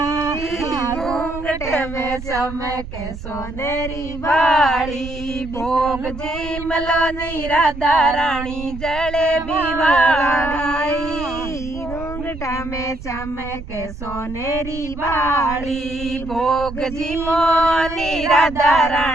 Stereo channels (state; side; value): noise; right; rumble, 11 dB below the sound